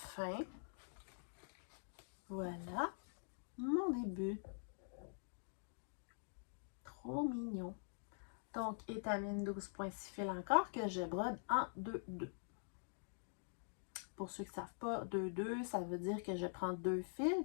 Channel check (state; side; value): silent; right; digital silence